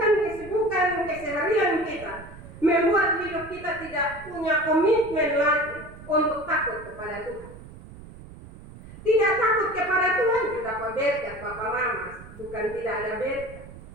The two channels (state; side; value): noise; right; rumble, 17 dB below the sound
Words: keseharian kita membuat hidup kita tidak punya komitmen lagi untuk takut kepada Tuhan. Tidak takut kepada Tuhan juga berkat, Bapak Mama, bukan tidak ada berkat.